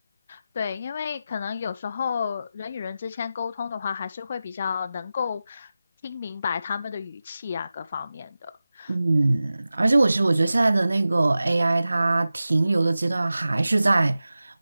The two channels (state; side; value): inverted; both; correlation -0.94